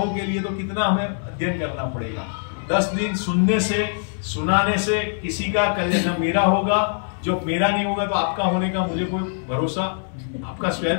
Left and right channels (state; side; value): silent; right; 59 dB below the other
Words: के लिए तो कितना हमें अध्ययन करना पड़ेगा। 10 दिन सुनने से, सुनाने से किसी का कल्याण मेरा होगा, जो मेरा नहीं होगा तो आपका होने का मुझे कोई भरोसा, आपका